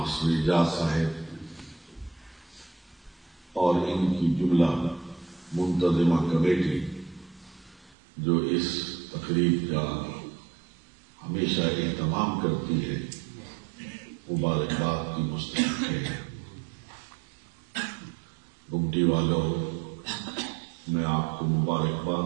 اعجاز صاحب اور ان کی جملہ منتظمہ کمیٹی جو اس تقریب کا ہمیشہ اہتمام کرتی ہے، مبارکباد کی مستحق ہے۔ گمٹی والوں، میں آپ کو مبارکباد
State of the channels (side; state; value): left; drops out; at 8.0 s